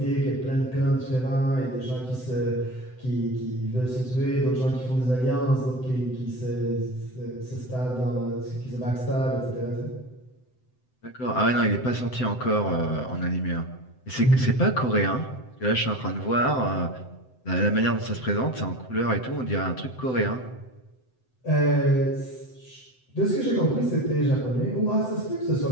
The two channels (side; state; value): right; late; 7.8 ms